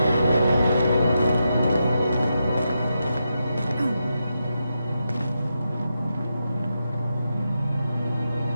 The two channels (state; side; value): inverted; both; correlation -0.86